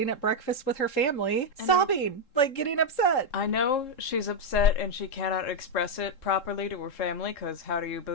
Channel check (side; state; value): right; late; 3.7 ms